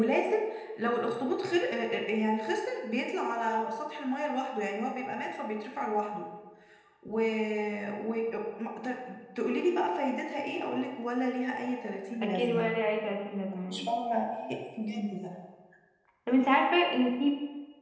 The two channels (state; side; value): identical; both; correlation 1.00